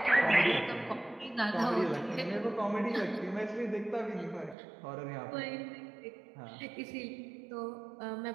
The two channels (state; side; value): drops out; left; at 4.5 s